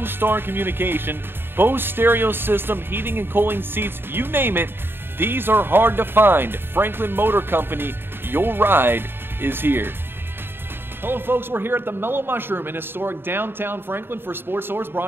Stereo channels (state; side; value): late; left; 0.10 ms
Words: communication, Bose stereo system, heating and cooling seats, you name it. These are hard to find. Franklin Motor Company, your ride is here. Hello folks, we're here at the Mellow Mushroom in historic downtown Franklin for Sports Source,